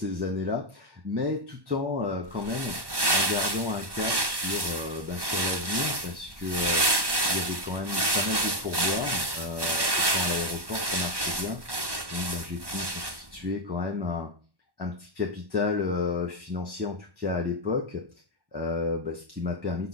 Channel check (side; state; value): left; late; 1.1 ms